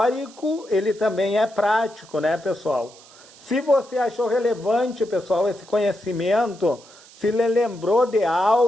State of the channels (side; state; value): right; noise; hiss, 23 dB below the sound